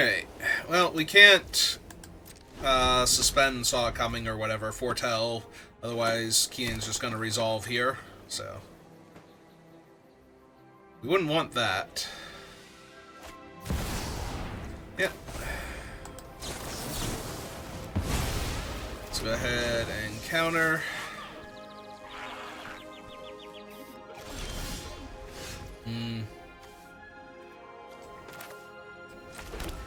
Well, we can't suspend Saw It Coming or whatever, foretell. Otherwise, Keenan's just going to resolve here. So... we wouldn't want that. Yep. Let's go ahead and counter.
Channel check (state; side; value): identical; both; correlation 1.00